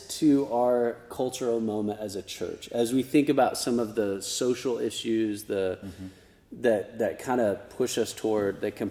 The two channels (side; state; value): both; identical; correlation 1.00